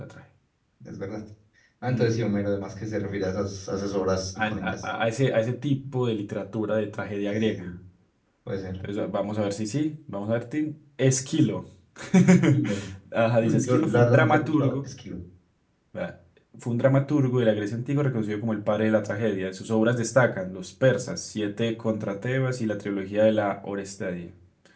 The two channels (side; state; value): both; identical; correlation 1.00